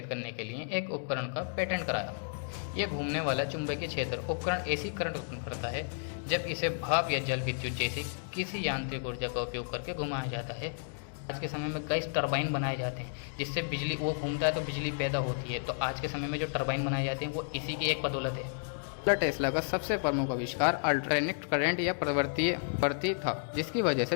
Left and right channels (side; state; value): right; silent; digital silence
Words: करने के लिए एक उपकरण का पेटेंट कराया। यह घूमने वाला चुंबकीय क्षेत्र उपकरण एसी करंट उत्पन्न करता है जब इसे भाप या जल विद्युत जैसी किसी यांत्रिक ऊर्जा का उपयोग करके घुमाया जाता है। आज के समय में कई टरबाइन बनाए जाते हैं जिससे बिजली वो घूमता है तो बिजली पैदा होती है। तो आज के समय में जो टरबाइन बनाए जाते हैं वो इसी की एक बदौलत है। टेस्ला का सबसे प्रमुख आविष्कार अल्टरनेट करंट या प्रवर्ती था, जिसकी वजह से